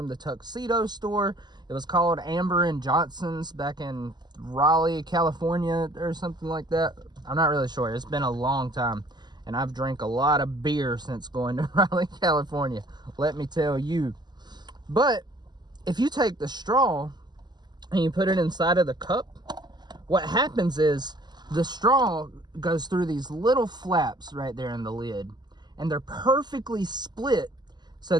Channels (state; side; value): late; left; 0.21 ms